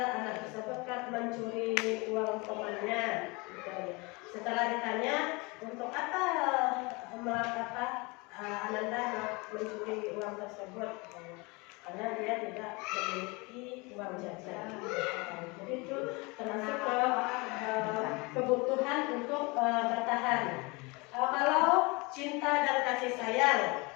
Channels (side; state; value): right; quieter; 26.8 dB